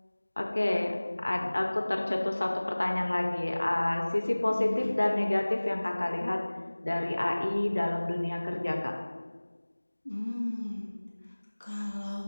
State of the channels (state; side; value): inverted; both; correlation -1.00